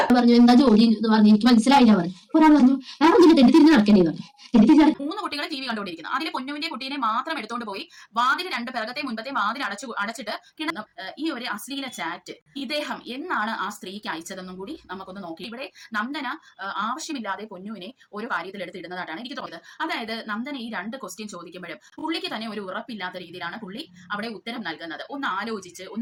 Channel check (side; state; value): both; identical; correlation 1.00